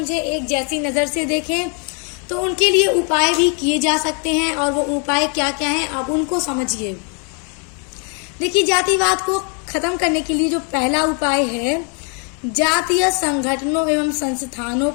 एक जैसी नजर से देखें। तो उनके लिए उपाय भी किए जा सकते हैं, और वो उपाय क्या क्या हैं अब उनको समझिए। देखिए, जातिवाद को खत्म करने के लिए जो पहला उपाय है, जातीय संगठनों एवं संस्थानों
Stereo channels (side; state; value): right; quieter; 38.4 dB